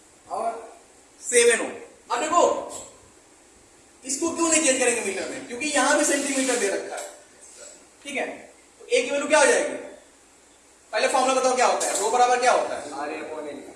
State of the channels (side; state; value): both; identical; correlation 1.00